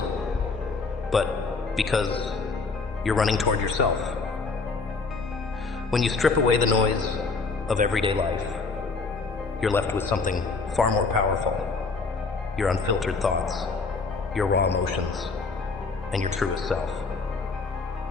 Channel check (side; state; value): right; quieter; 4.2 dB